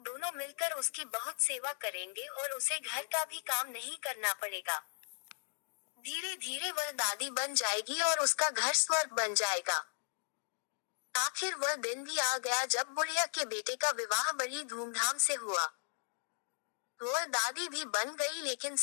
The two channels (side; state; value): right; silent; digital silence